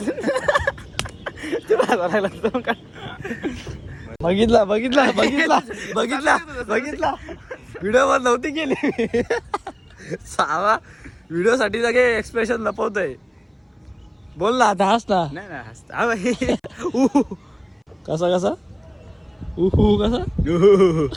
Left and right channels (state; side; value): identical; both; correlation 1.00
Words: बघितला व्हिडिओ वर नव्हती केली. सावा व्हिडिओ साठी सगळे एक्सप्रेशन लपवतोय. बोल ना आता, हस ना. नाही हसता कसा कसा